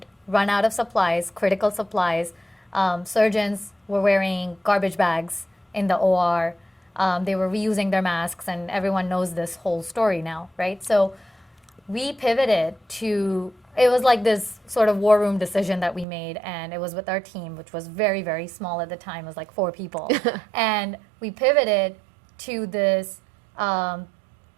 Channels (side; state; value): left; drops out; at 16.1 s